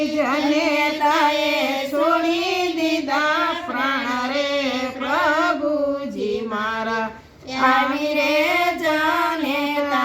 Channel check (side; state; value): both; identical; correlation 1.00